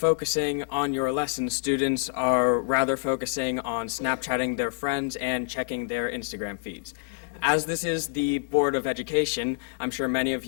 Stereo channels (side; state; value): right; silent; 60 dB below the other